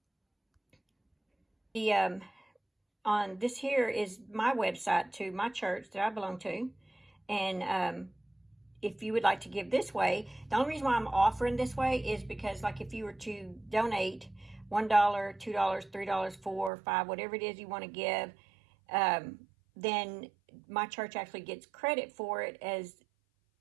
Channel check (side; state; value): left; drops out; at 16.7 s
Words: on this here is my website to my church that I belong to. And if you would like to give this way, the only reason why I'm offering this way is because, like, if you were to donate $1, $2, $3, $4, $5, whatever it is you want to give, then my church actually gets credit for it as,